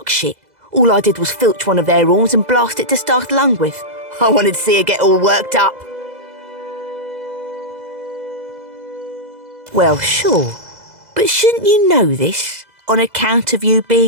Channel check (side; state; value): left; late; 2.0 ms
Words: shit. All I did was filch one of their horns and blast it to start a lung with. I wanted to see her get all worked up. Well, sure. But shouldn't you know this, on account of you